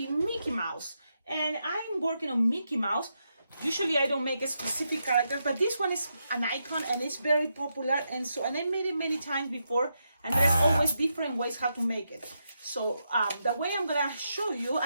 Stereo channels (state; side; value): inverted; both; correlation -0.83